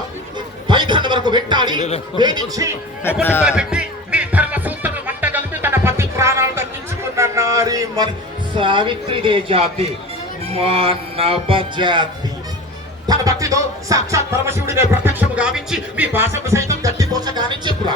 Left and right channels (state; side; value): normal; both; correlation 0.34